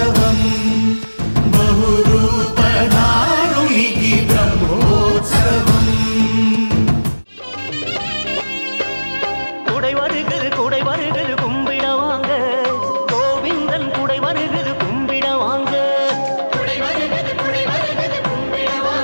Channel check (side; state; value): both; inverted; correlation -1.00